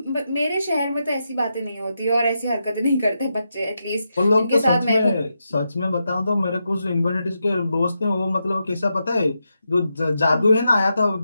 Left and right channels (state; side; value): inverted; both; correlation -0.86